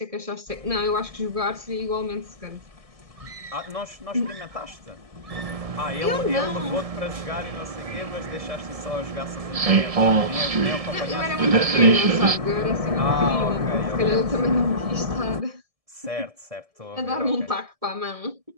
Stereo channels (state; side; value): late; left; 1.7 ms